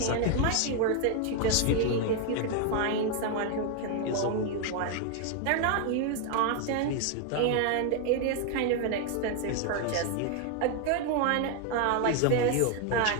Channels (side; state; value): both; different; correlation 0.01